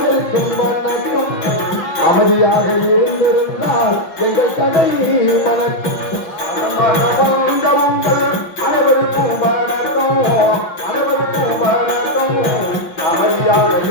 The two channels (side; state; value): right; late; 5.7 ms